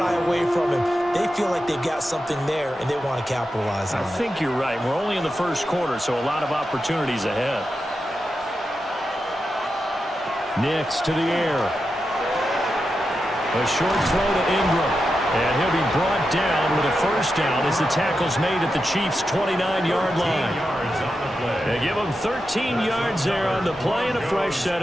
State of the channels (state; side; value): normal; both; correlation 0.89